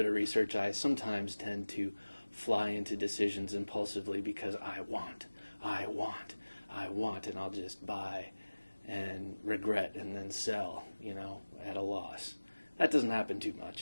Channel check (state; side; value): inverted; both; correlation -1.00